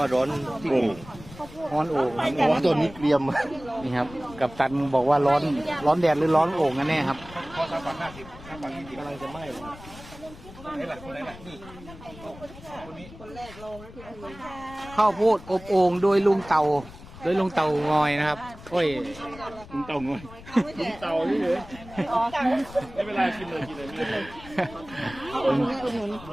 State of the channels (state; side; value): noise; left; rumble, 17 dB below the sound